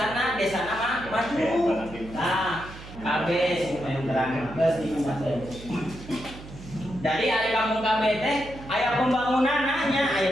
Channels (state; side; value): noise; right; hum, 15 dB below the sound